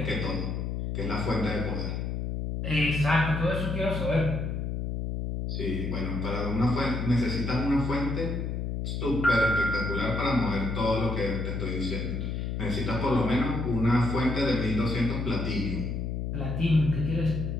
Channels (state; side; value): noise; left; hum, 2 dB below the sound